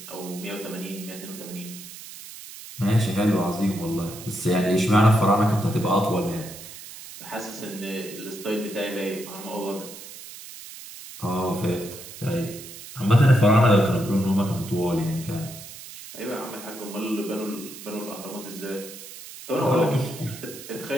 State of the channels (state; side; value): noise; right; hiss, 14 dB below the sound